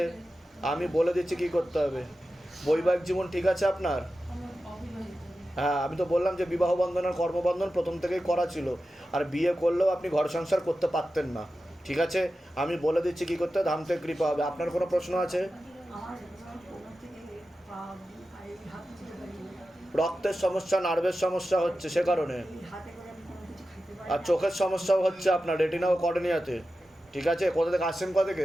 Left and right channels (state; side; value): normal; both; correlation 0.93